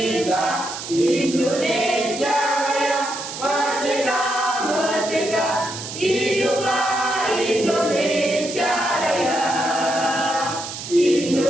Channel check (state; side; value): noise; right; hiss, 9 dB below the sound